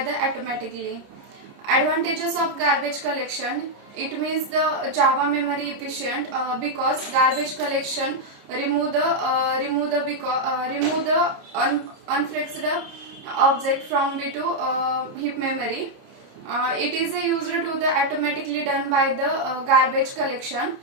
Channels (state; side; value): late; left; 29 ms